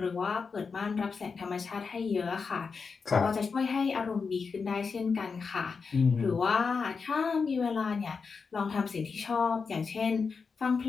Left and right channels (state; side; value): quieter; right; 5.2 dB